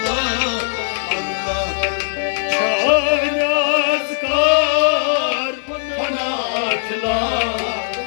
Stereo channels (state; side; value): silent; right; digital silence